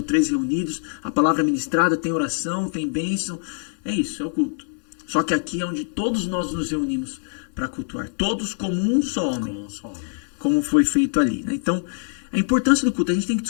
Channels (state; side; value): silent; right; 63 dB below the other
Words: 3 reunidos, a palavra ministrada, tem oração, tem bênção. É isso, é o culto. Só que aqui é onde todos nós nos reunimos para cultuar. Todos como um só homem. Como foi feito ali, né? Então, a importância do culto, a gente tem que